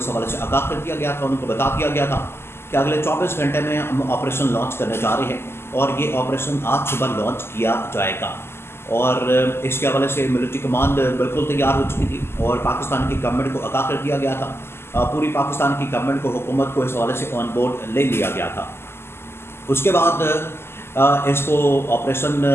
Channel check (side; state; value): right; late; 0.12 ms